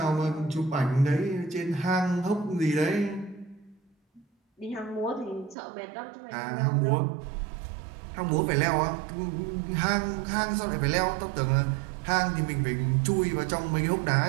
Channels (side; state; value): left; drops out; at 5.6 s